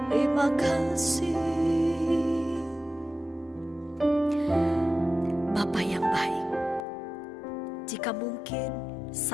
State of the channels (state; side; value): drops out; right; at 6.9 s